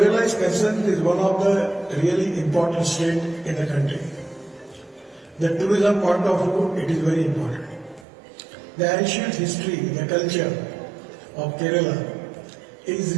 is concerned, it is one of the really important states in the country. The tourism point of view, it is very important. The ancient history, the culture of Kerala is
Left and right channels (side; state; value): left; drops out; at 8.1 s